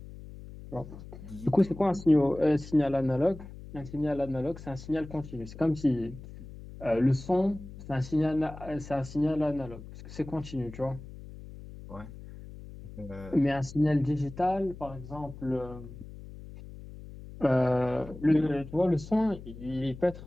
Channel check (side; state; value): left; noise; hum, 14 dB below the sound